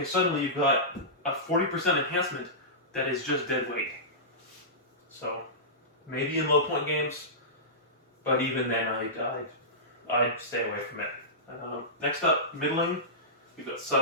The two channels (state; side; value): normal; both; correlation -0.18